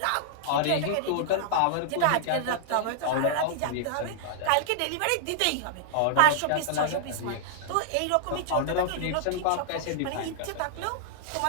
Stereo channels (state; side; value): different; both; correlation -0.01